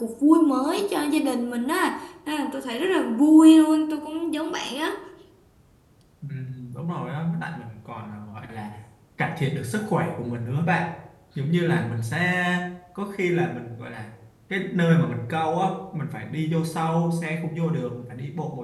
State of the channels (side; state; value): both; identical; correlation 1.00